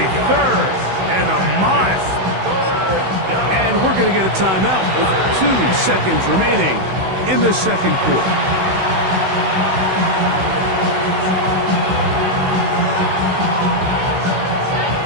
going to get a timeout with 2 seconds remaining in the second quarter.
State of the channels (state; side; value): late; left; 16 ms